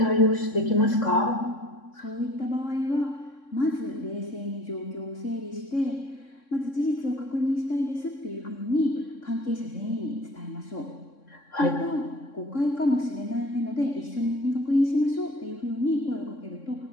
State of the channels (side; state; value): right; late; 3.6 ms